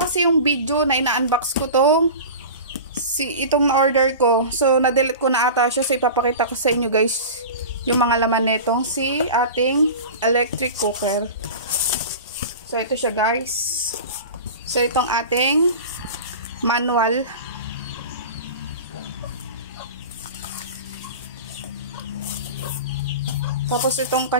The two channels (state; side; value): inverted; both; correlation -0.33